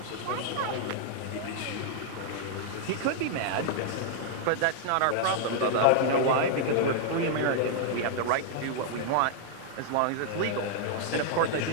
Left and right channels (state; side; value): different; both; correlation -0.01